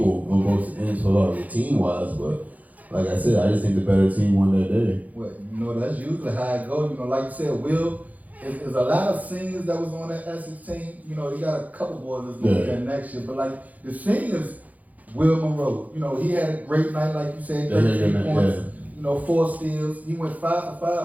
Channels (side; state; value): left; late; 0.077 ms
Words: on both ends for team wise, but like I said, I just think the better team won that day. Well, that's usually how it goes. Like you said, Will, there's a lot of seniors that was on that Essex team. You got a couple boys that's going to be there next year, but like the seniors, Will Monroe, he had a great night, like you said, 13 points. 4 steals. He went 5 for